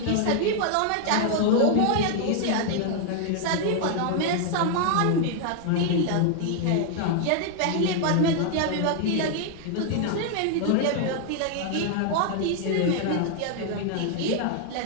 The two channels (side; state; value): both; different; correlation 0.00